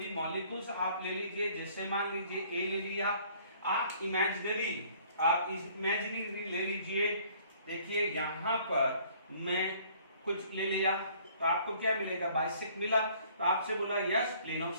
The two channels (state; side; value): inverted; both; correlation -0.57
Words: मॉलिक्यूल्स आप ले लीजिए, जैसे मान लीजिए ए ले लिया, आप इमेजिनरी ले लीजिए। देखिए यहां पर मैं कुछ ले लिया तो आपको क्या मिलेगा, बाइसेक्ट मिला, तो आपसे बोला यस प्लेन ऑफ